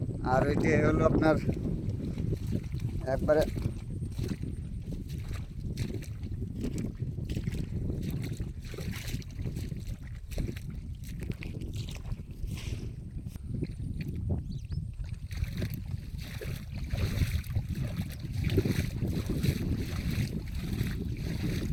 আর ওইটি হলো আপনার একবারে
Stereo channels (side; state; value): both; identical; correlation 1.00